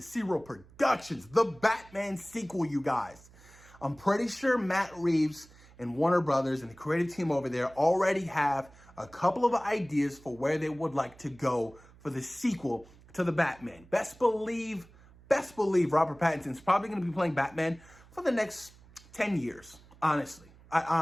Zero Productions, the Batman sequel, you guys. I'm pretty sure Matt Reeves and Warner Brothers and the creative team over there already have a couple of ideas for where they would like to go for the sequel to the Batman. Best believe Robert Pattinson's probably going to be playing Batman for the next 10 years, honestly.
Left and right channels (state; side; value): noise; right; hum, 24 dB below the sound